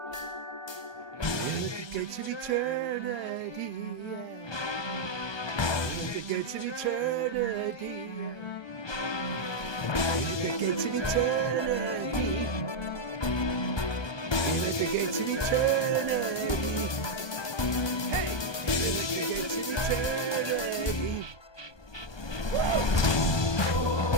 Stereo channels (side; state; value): right; late; 1.2 ms